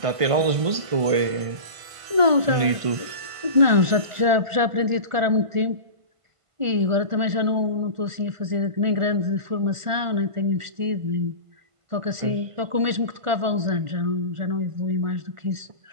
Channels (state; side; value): late; left; 1.4 ms